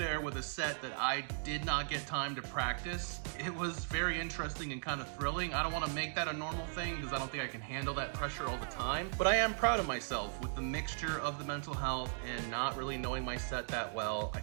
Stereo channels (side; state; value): left; silent; digital silence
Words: with a set that I did not get time to practice, it was very interesting and kind of thrilling. I don't want to make that a normal thing because I don't think I can handle that pressure all the time, but I am proud of myself with the mixture of the mental health and not really knowing my set that well. I